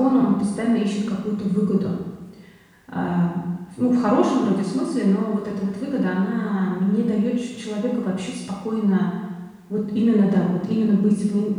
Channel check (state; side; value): identical; both; correlation 1.00